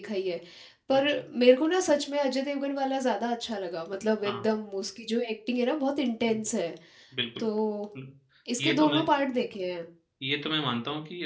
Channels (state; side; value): identical; both; correlation 1.00